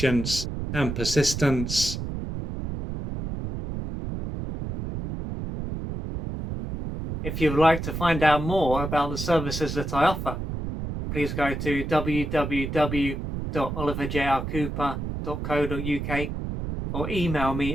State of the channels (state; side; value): noise; right; rumble, 5 dB below the sound